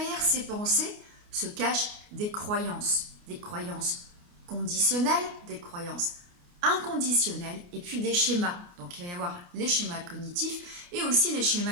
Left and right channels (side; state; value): left; late; 29 ms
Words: ces pensées se cachent des croyances conditionnelles, des croyances inconditionnelles et puis des schémas. Donc il va y avoir les schémas cognitifs et aussi les